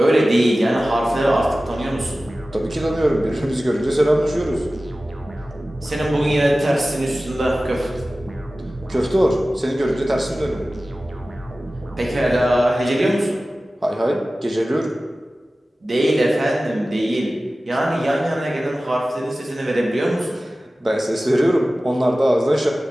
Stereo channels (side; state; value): both; normal; correlation 0.96